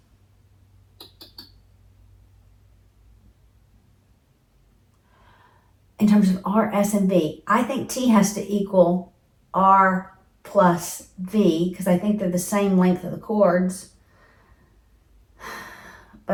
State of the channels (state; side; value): identical; both; correlation 1.00